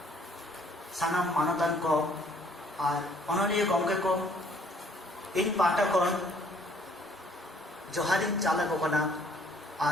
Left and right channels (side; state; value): both; normal; correlation 0.61